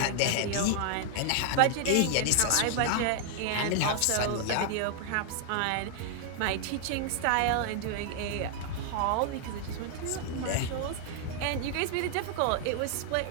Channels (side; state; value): both; different; correlation 0.00